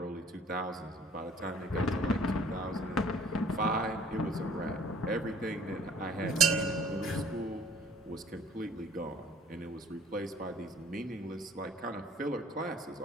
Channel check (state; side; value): normal; both; correlation 0.53